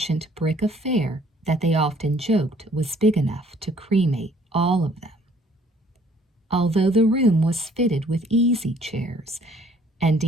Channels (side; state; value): both; normal; correlation 0.60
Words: brick affair that they often joked was big enough to cremate all of them. Although the room was fitted with easy chairs and